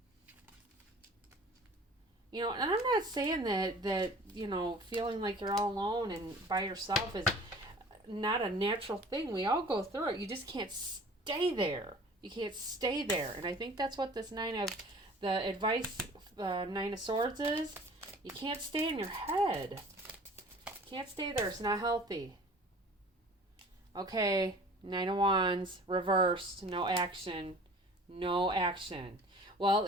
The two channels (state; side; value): normal; both; correlation 0.46